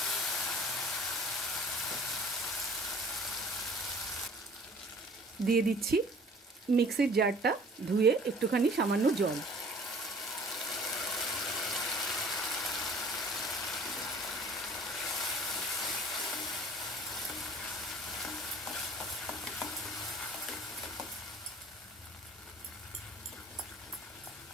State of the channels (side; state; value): both; normal; correlation 0.50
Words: দিয়ে দিচ্ছি মিক্সির জারটা ধুয়ে একটুখানি সামান্য জল।